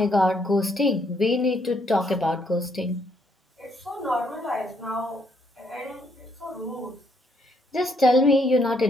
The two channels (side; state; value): both; normal; correlation 0.72